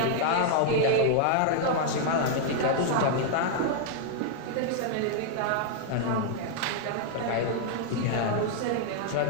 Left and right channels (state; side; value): different; both; correlation 0.00